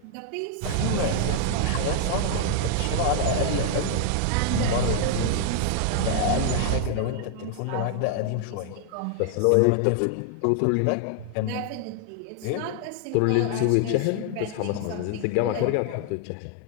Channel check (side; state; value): both; different; correlation 0.00